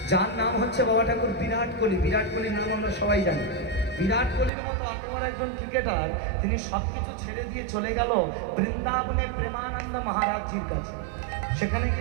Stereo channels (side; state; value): left; drops out; at 4.5 s